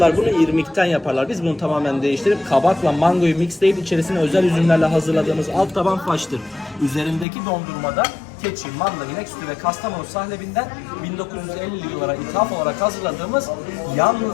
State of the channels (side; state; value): right; drops out; at 7.2 s